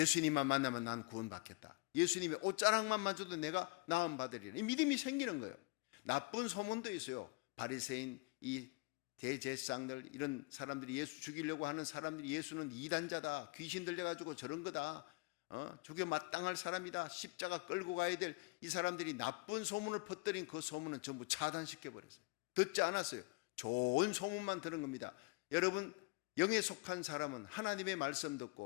만나면 난 구원받겠다. 예수님의 옷자락만 만져도 내가 나음 받으리라. 이 믿음이 생기는 거예요. 나쁜 소문도 있어요. 바리새인, 이 대제사장들, 이런 사람들이, 예수 죽이려고 하는 사람들이 예수는 이단자다, 귀신 들려가지고 저런 거다, 죽여 마땅할 사람이다, 십자가 끌고 가야 될, 이 사람들이 나쁜 소문을 퍼뜨린 그 소문은 전부 차단시켜버렸어요. 듣지 않았어요. 좋은 소문만 들은 겁니다. 여러분, 영에 속한 사람은 하나님의 말씀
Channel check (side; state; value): right; quieter; 26.0 dB